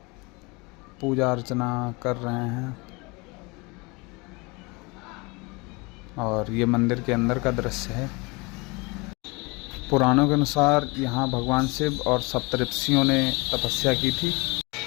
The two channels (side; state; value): right; quieter; 26.8 dB